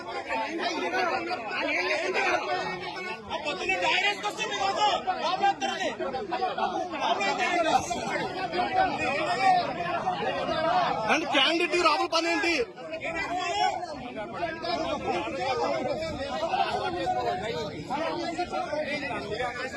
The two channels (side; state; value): both; identical; correlation 1.00